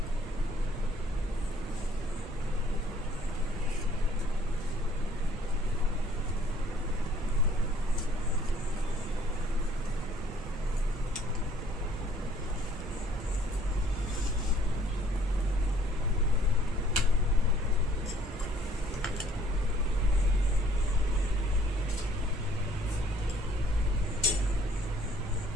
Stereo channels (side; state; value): right; noise; rumble, 10 dB below the sound